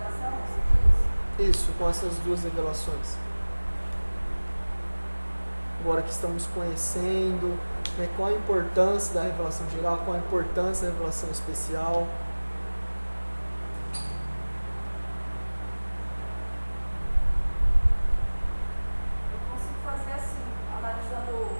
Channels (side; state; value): both; inverted; correlation -1.00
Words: Isso, com essas duas revelações. Agora que estamos conhecendo, né, qual a importância da revelação geral, qual a importância da revelação especial. Eu consigo fazer assim, analisando